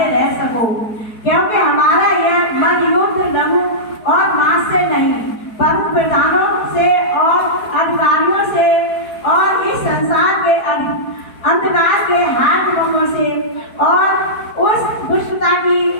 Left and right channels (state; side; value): late; right; 4.5 ms